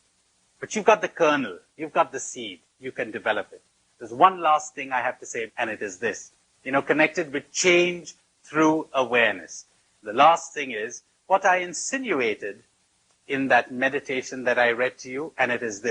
But you've got the kernel. You've got the seed. You can develop it. There's one last thing I have to say, and it is this. Connected with change through awareness. The last thing is what I insinuated in that meditation that I read to you, and it is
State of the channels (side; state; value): both; identical; correlation 1.00